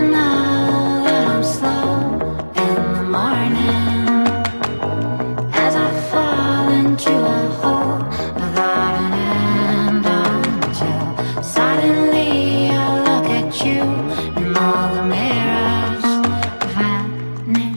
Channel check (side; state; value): both; inverted; correlation -1.00